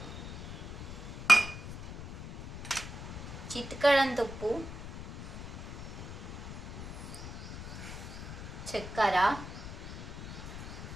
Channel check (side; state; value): left; noise; rumble, 8 dB below the sound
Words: చిటికెడంత ఉప్పు, చక్కెర,